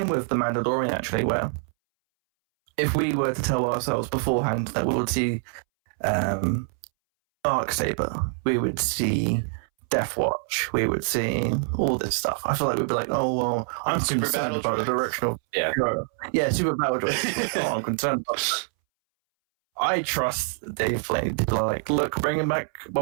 with The Mandalorian, actually, where if we were to tell ourselves beforehand that we would see Darksaber, we would see Death Watch, we would see all this stuff, I feel like we'd be like, oh, well, I'm Super concerned Battle about the Droid. direction of... Yeah. Super Battle Droid. Oh, I'm concerned about that. I trust Dave Filoni to be like, look, bringing back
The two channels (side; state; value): left; silent; 61 dB below the other